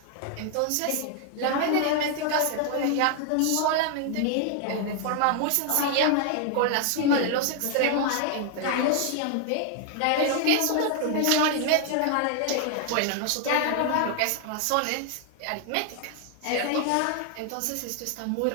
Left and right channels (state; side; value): different; both; correlation 0.00